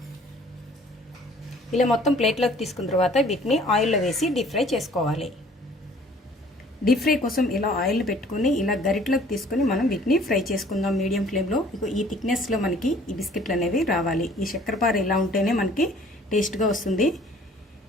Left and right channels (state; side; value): normal; both; correlation 0.54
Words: ఇలా మొత్తం ప్లేట్లోకి తీసుకున్న తర్వాత వీటిని ఆయిల్లో వేసి డీప్ ఫ్రై చేసుకోవాలి. డీప్ ఫ్రై కోసం ఇలా ఆయిల్ పెట్టుకుని ఇలా గరిటలోకి తీసుకుని మనం వీటిని ఫ్రై చేసుకుందాం మీడియం ఫ్లేమ్లో. ఈ థిక్నెస్లో మనకి ఈ బిస్కెట్లు అనేవి రావాలి. ఈ చక్కెరపార ఇలా ఉంటేనే మనకి టేస్ట్గా వస్తుంది.